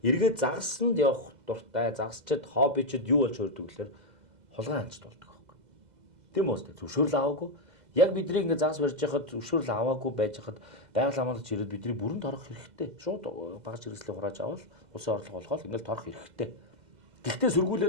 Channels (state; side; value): late; left; 2.0 ms